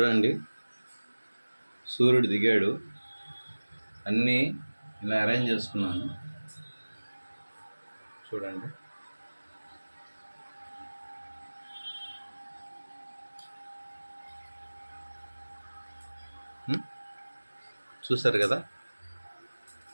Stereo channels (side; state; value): both; inverted; correlation -1.00